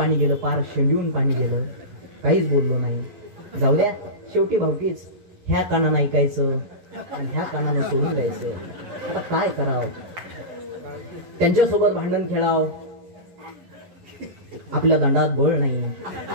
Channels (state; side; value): late; left; 12 ms